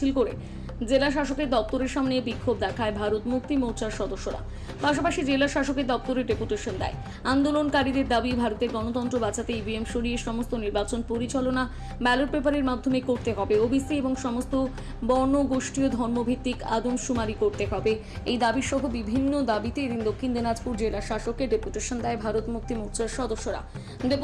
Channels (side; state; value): both; identical; correlation 1.00